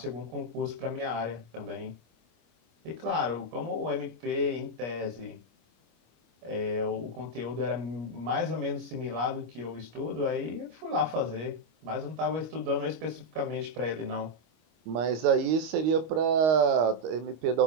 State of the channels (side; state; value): left; late; 25 ms